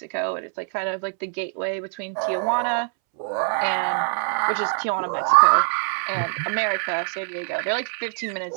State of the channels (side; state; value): left; silent; 63 dB below the other